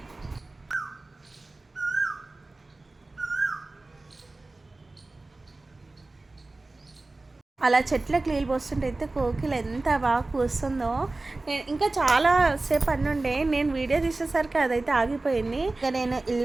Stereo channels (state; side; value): quieter; left; 3.1 dB